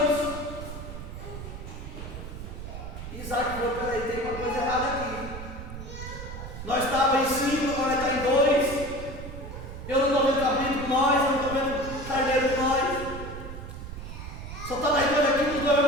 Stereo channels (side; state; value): right; noise; rumble, 10 dB below the sound